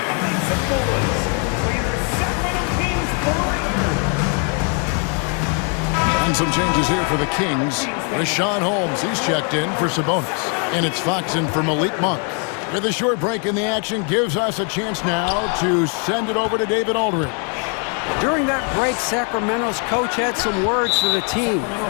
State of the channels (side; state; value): right; quieter; 39.6 dB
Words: And some changes here for the Kings. Rashawn Holmes, he's checked in for Sabonis. And it's Fox in for Malik Monk. With a short break in the action, gives us a chance now to send it over to David Aldridge. During that break, Sacramento's coach had some words for the team.